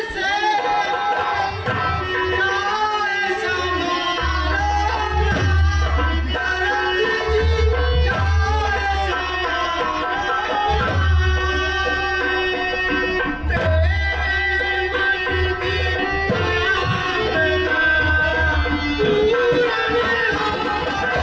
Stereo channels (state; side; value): identical; both; correlation 1.00